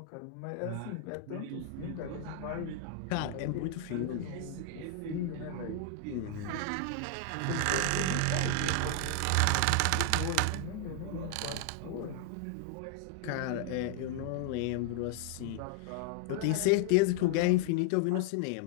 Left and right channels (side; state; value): both; different; correlation 0.00